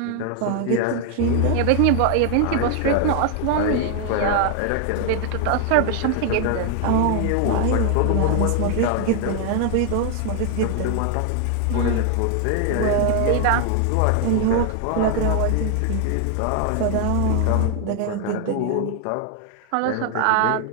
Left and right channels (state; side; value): different; both; correlation 0.00